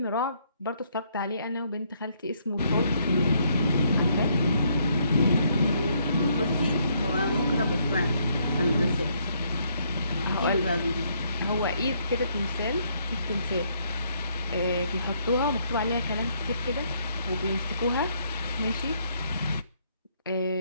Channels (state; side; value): inverted; both; correlation -0.70